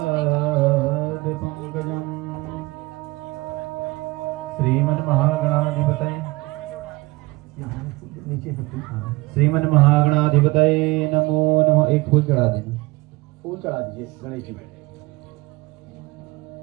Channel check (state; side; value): quieter; left; 22.6 dB